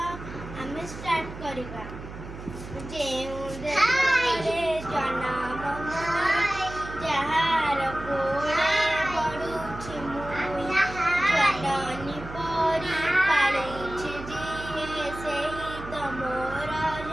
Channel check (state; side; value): noise; right; hum, 12 dB below the sound